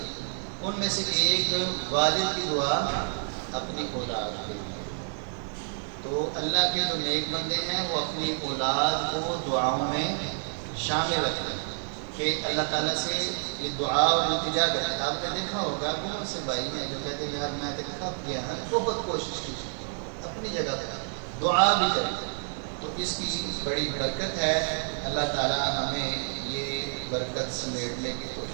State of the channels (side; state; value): left; silent; digital silence